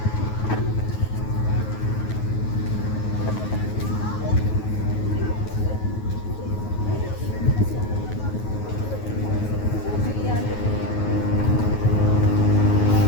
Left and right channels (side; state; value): right; late; 9.4 ms